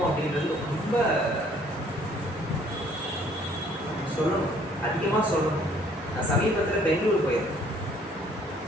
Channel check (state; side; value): normal; both; correlation 0.60